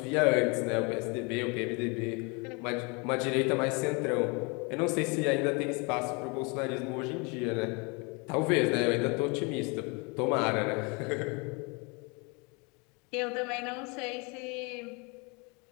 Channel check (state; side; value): quieter; right; 30.6 dB